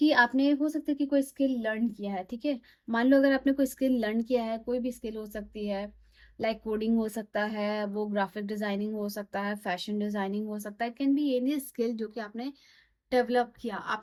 आपने हो सकता है कि कोई स्किल लर्न किया है। ठीक है, मान लो अगर आपने कोई स्किल लर्न किया है, कोई भी स्किल हो सकती है, लाइक कोडिंग हो सकता है, वो ग्राफिक डिजाइनिंग हो सकता है, फैशन डिजाइनिंग हो सकता है, कैन बी एनी स्किल जो कि आपने डेवलप किया,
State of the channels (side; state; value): both; identical; correlation 1.00